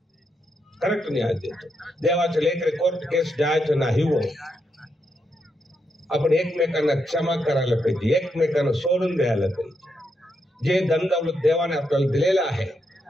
करेक्ट न्याय देतो. देवाचे लेकरे कोर्ट केस जायचं नाही हो. आपण एकमेकांना क्षमा करायला पाहिजे, एकमेकांना सोडून द्यायला पाहिजे. जे धन दौलत देवाने आपल्याला दिलेलं आहे,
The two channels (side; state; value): both; normal; correlation 0.81